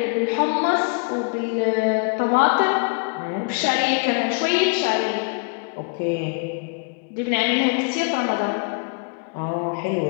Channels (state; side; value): quieter; right; 33.4 dB